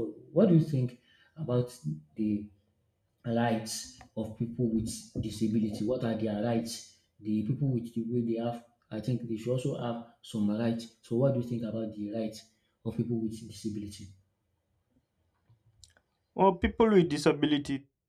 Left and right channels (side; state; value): both; identical; correlation 1.00